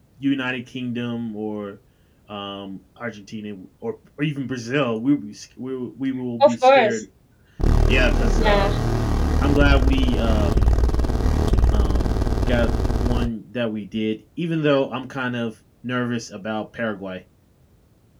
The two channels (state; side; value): identical; both; correlation 1.00